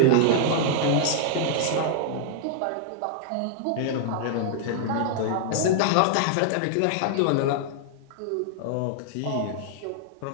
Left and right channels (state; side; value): different; both; correlation -0.01